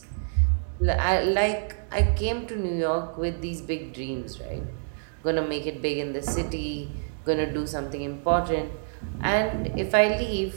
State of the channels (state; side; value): silent; left; digital silence